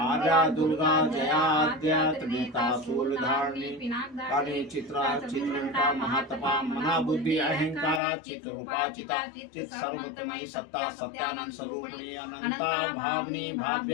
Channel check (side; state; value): right; drops out; at 8.0 s